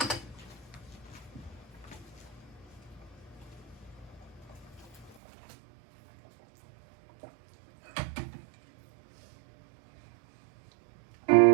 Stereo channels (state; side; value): drops out; left; at 5.2 s